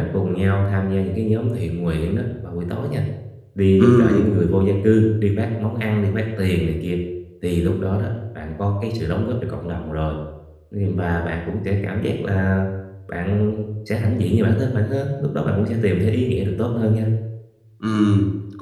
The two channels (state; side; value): identical; both; correlation 1.00